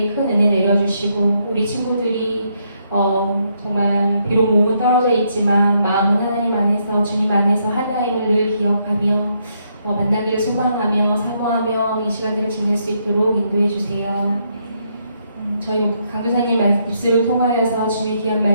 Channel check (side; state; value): both; inverted; correlation -0.75